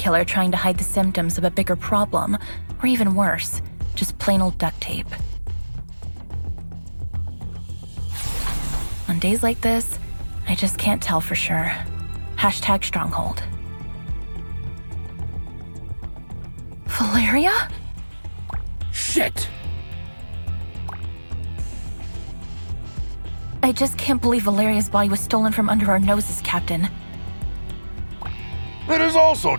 trying to hide the symptoms of a bigger problem? Or even worse, just plain old duct tape? On days like this, I just can't tell for sure. Hashtag Stronghold. Valeria? Shit! I just can't believe Valeria's body was stolen from under our noses, Captain. It is also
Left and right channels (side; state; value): both; inverted; correlation -1.00